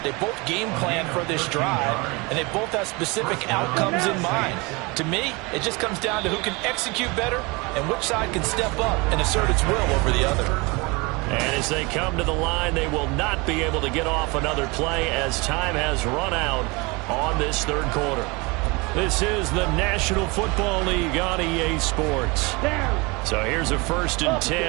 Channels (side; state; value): left; quieter; 26.6 dB